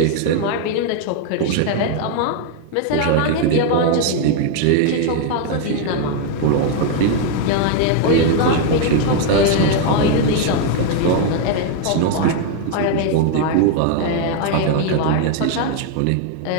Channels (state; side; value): different; both; correlation 0.00